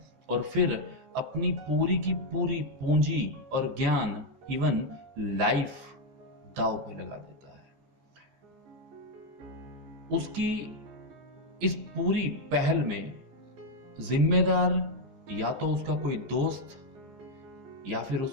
और फिर अपनी पूरी की पूरी पूंजी और ज्ञान, इवन लाइफ दांव पे लगा देता है। उसकी इस पूरी पहल में जिम्मेदार या तो उसका कोई दोस्त या फिर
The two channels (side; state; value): left; late; 15 ms